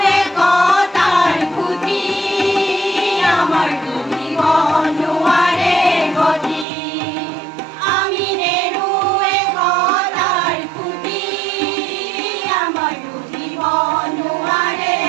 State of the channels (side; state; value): left; drops out; at 6.7 s